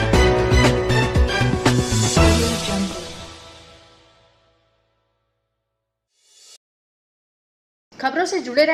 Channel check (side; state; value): both; identical; correlation 1.00